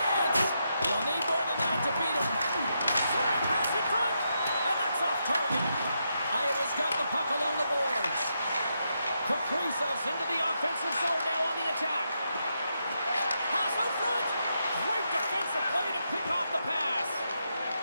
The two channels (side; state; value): both; inverted; correlation -0.82